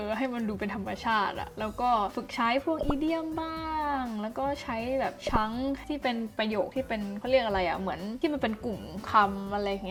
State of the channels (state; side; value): identical; both; correlation 1.00